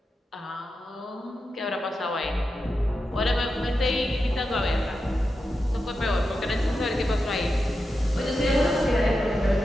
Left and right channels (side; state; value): both; normal; correlation 0.89